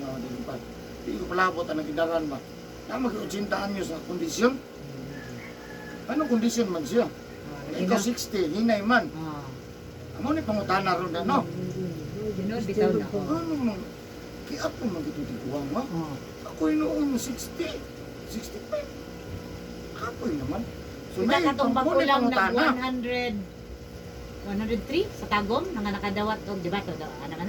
dilipad. Di ko palabot ang idaran ba. Na mag-80 anyos sa kondisyon. Anong kondisyon man siya? Ikaw 60, hinay man. Ah. Amo ni pangutana ron na, no? Junod bitaw na. Ano man? Kaya ako magitutiguan mo. Oh. Ako'y noon 60, 65. Ako'y naman. Kita katong pangkuli bago lang nag pangutana. 103 sa Tagom nga nakadawat og di ba to ano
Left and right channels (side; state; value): both; identical; correlation 1.00